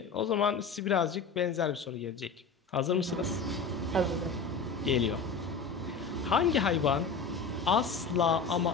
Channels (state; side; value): quieter; right; 4.8 dB